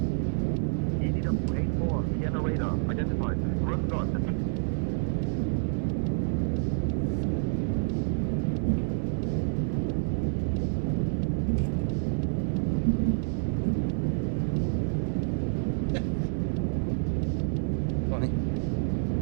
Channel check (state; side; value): silent; left; digital silence